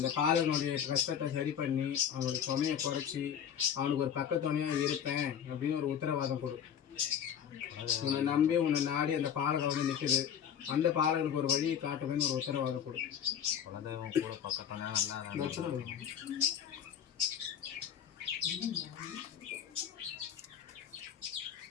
பாலகனுடைய கஷ்டத்தை சரி பண்ணி அவனுடைய சுமையை குறைச்சி அவனுக்கு ஒரு பக்கத்துணையாக இருப்பேன் அப்படின்னு ஒரு உத்தரவாதம் கொடு. உன்னை நம்பி உன்னை நாடி அந்த பாலகன் வந்து நிற்குது. அந்த பாலகனுக்கு ஒரு வழியை காட்டுவேன்னு ஒரு உத்தரவாதம் கொடு. குலதெய்வம் கூட பக்கத்தான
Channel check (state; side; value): quieter; right; 8.7 dB